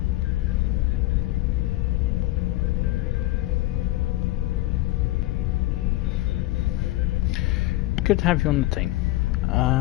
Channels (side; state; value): right; quieter; 17.6 dB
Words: Good to have you on the team.